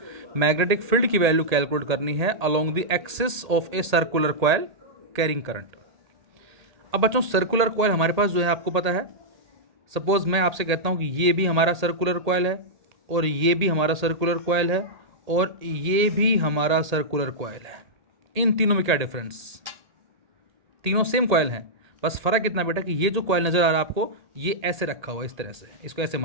मैग्नेटिक फील्ड की value calculate करनी है along the axis of a circular coil carrying current. अब बच्चों circular coil हमारे पास जो है आपको पता है, सपोज मैं आपसे कहता हूँ कि ये भी हमारा सर्कुलर कॉइल है और ये भी हमारा सर्कुलर कॉइल है और ये भी हमारा सर्कुलर कॉइल है. इन तीनों में क्या डिफरेंस? तीनों सेम कॉइल हैं, बस फ़र्क इतना बेटा कि ये जो कॉइल नज़र आ रहा है आपको ये ऐसे रखा हुआ है, इस तरह से. इसको ऐसे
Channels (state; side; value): late; left; 1.8 ms